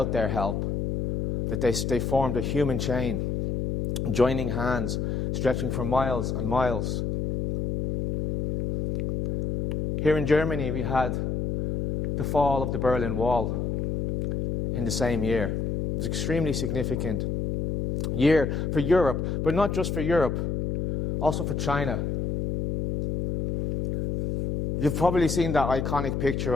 their help, that they formed a human chain, joining hands, stretching for miles and miles. Here in Germany, we had the fall of the Berlin Wall in the same year. It was an extremely significant year for Europe, but not just for Europe, also for China. You've probably seen that iconic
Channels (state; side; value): noise; left; hum, 1 dB below the sound